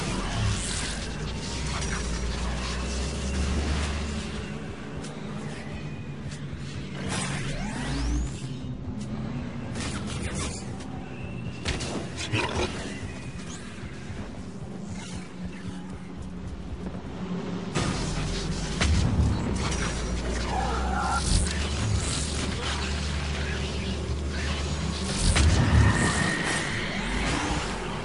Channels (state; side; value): identical; both; correlation 1.00